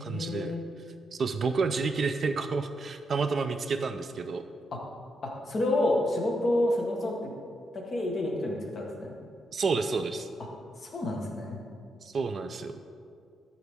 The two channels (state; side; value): normal; both; correlation 0.82